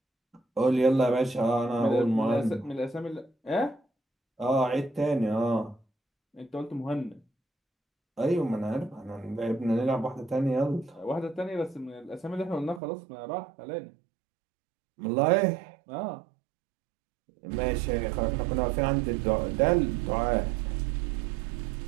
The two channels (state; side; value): drops out; left; at 12.8 s